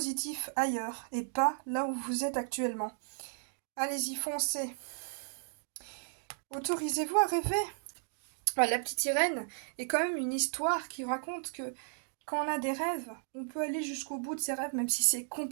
ailleurs, et pas là où vous êtes actuellement. Allez-y, foncez. Autorisez-vous à rêver. Enfin, la petite sirène est quand même une histoire qui raconte que quand on a des rêves, on peut aller jusqu'au bout de ses rêves, même si c'est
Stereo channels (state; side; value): silent; left; digital silence